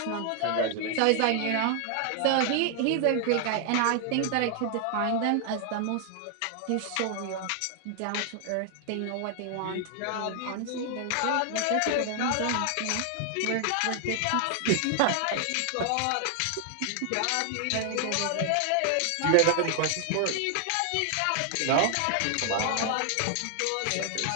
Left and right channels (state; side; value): different; both; correlation 0.00